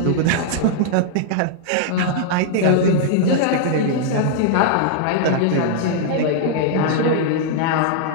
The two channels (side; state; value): both; different; correlation -0.01